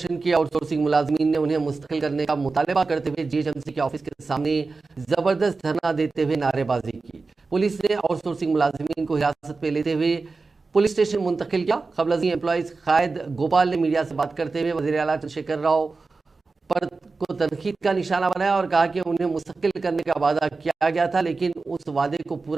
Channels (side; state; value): left; quieter; 4.0 dB